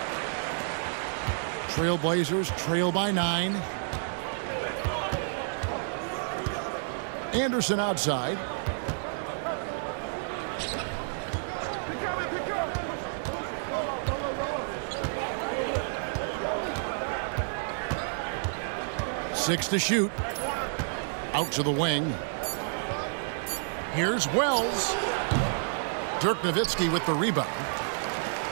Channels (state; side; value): silent; left; digital silence